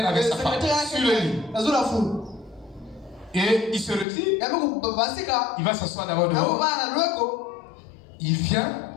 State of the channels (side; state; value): right; drops out; at 4.0 s